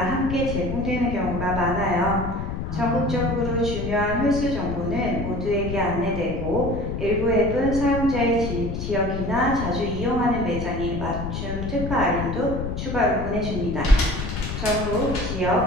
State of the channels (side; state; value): left; noise; rumble, 4 dB below the sound